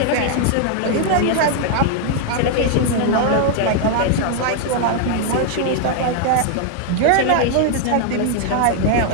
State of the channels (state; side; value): different; both; correlation 0.00